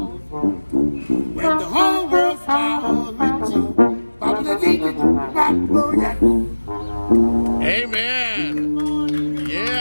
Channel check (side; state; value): both; inverted; correlation -1.00